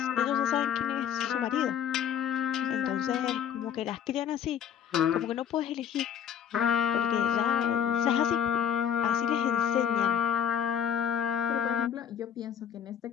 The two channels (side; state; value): right; quieter; 8.9 dB